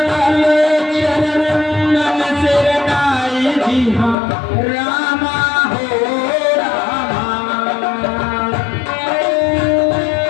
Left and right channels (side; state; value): right; drops out; at 4.2 s